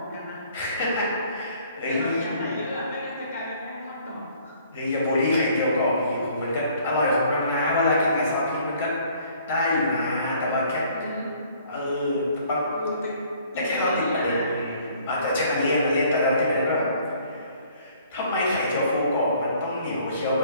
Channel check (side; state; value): both; inverted; correlation -0.58